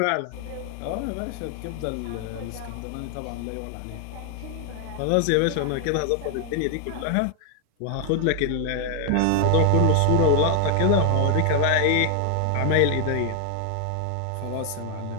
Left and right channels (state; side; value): different; both; correlation 0.00